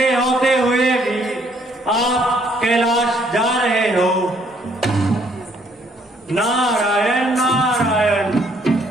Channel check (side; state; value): both; normal; correlation 0.66